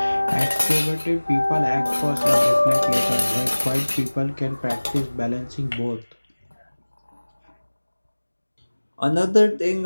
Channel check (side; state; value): both; inverted; correlation -1.00